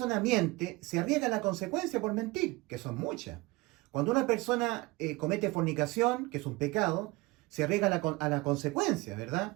miente, se arriesga la consecuencia por mentir, que son muchas. Cuando una persona comete fornicación, que es un pecado, se arriesga a la consecuencia,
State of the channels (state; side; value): quieter; left; 22.7 dB